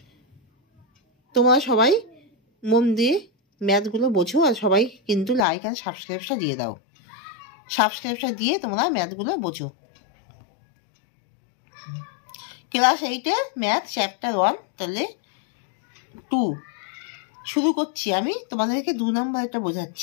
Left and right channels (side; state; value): right; drops out; at 5.5 s